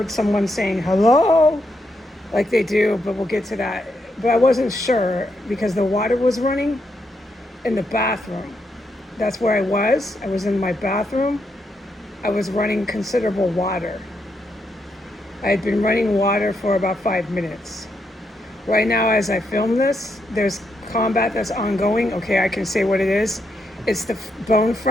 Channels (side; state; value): both; normal; correlation 0.80